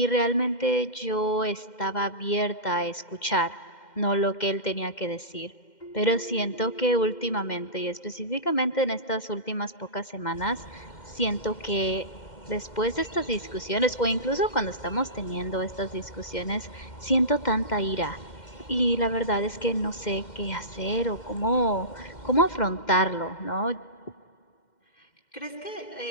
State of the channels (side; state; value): right; late; 2.1 ms